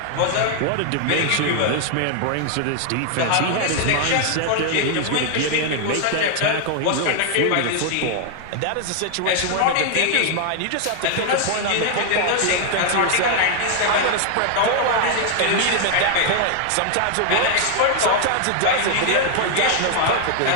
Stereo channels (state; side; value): different; both; correlation 0.00